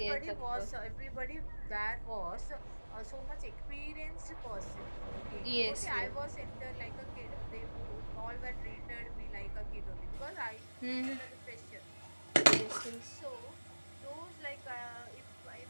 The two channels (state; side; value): inverted; both; correlation -1.00